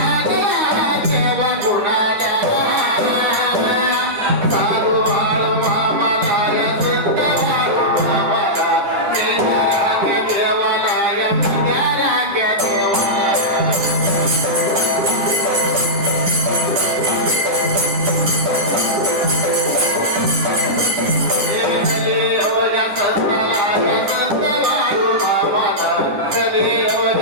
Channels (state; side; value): late; left; 9.8 ms